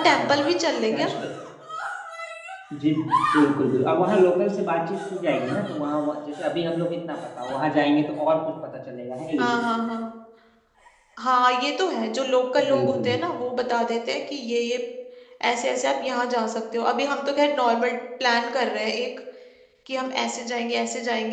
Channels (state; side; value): identical; both; correlation 1.00